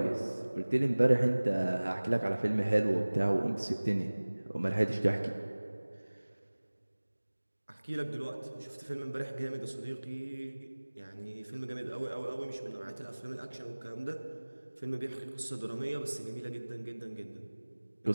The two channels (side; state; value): both; inverted; correlation -1.00